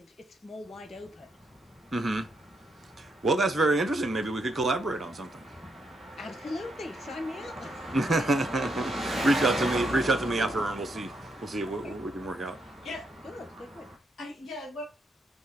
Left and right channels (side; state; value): both; normal; correlation 0.78